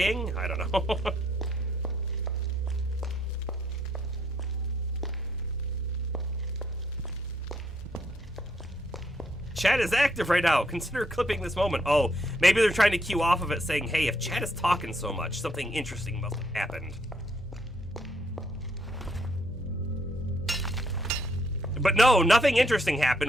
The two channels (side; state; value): both; normal; correlation 0.71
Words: I don't know. Chat is active right now. Consider clipping this moment. Oh, maybe they're trying to cue off of it saying, hey, if chat is talking so much, something interesting must have happened. But no, nothing interesting